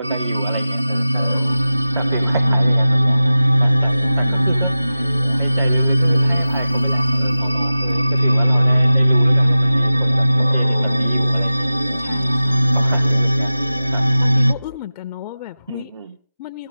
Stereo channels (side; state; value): both; inverted; correlation -0.95